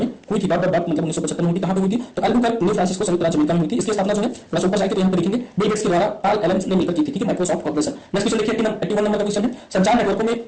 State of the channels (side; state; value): both; identical; correlation 1.00